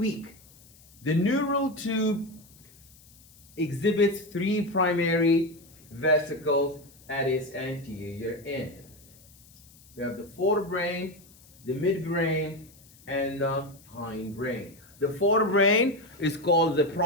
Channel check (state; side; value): noise; left; hiss, 25 dB below the sound